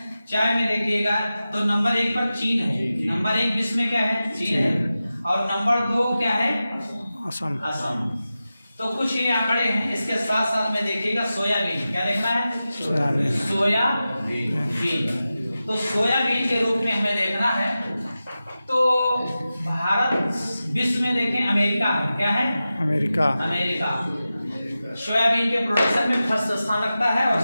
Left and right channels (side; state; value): both; inverted; correlation -0.94